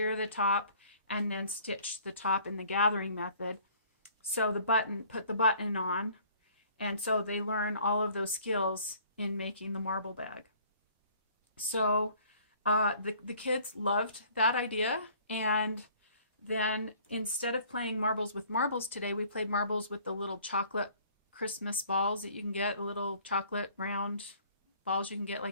the top, and then stitch the top in the gathering method. Sew the button, put the button on, and so they learn all of those skills in making the marble bag. So the kids loved that idea, and then instead of playing marbles with marbles today, we played marbles with the little chocolate Christmas balls that you can get, the little chocolate round balls you can get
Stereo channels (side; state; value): both; inverted; correlation -0.56